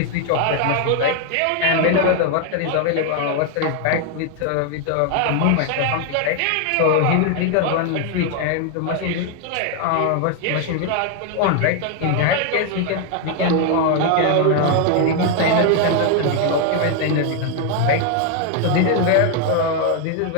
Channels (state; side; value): different; both; correlation 0.01